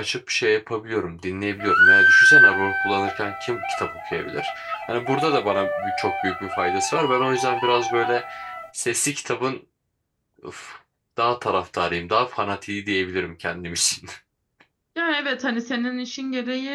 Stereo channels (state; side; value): identical; both; correlation 1.00